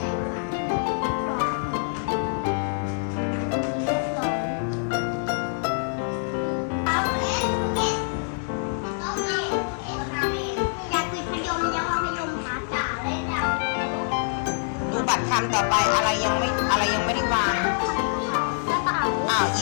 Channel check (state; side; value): silent; right; digital silence